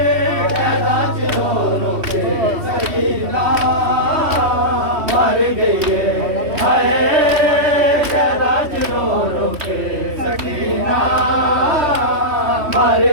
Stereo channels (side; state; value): left; late; 3.1 ms